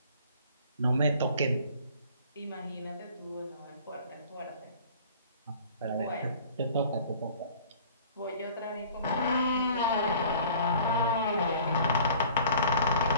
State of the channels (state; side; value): inverted; both; correlation -0.49